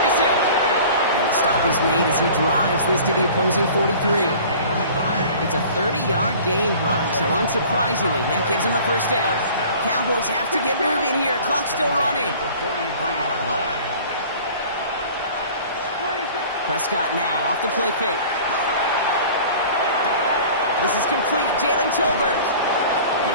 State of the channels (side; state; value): both; inverted; correlation -0.45